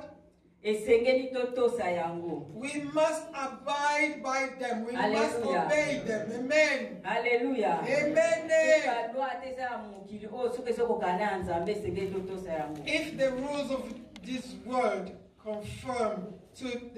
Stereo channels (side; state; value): both; identical; correlation 1.00